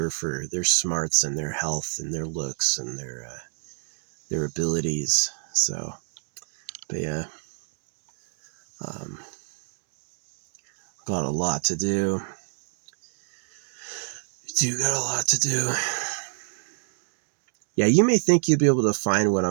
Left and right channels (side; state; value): left; silent; digital silence